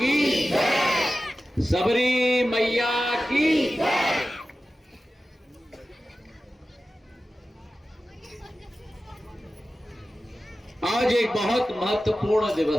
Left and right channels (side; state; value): both; normal; correlation 0.94